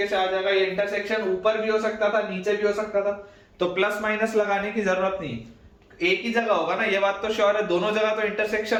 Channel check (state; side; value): identical; both; correlation 1.00